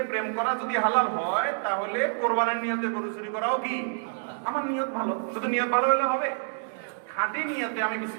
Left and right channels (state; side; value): silent; left; digital silence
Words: প্রেম করা যদি হালাল হয়, তাহলে কোরবানির নিয়তে গরু চুরি করাও কি? আমার নিয়ত ভালো, শুধু নিয়ত ভালো হলে হবে? খাঁটি নিয়তে আমি